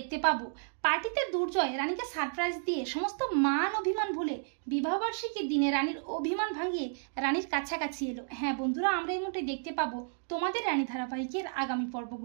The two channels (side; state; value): left; silent; digital silence